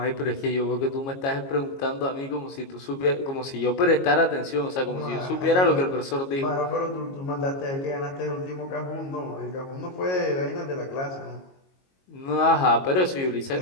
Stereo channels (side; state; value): right; late; 22 ms